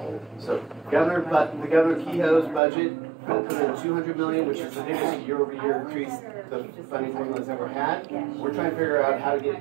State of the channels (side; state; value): left; drops out; at 2.6 s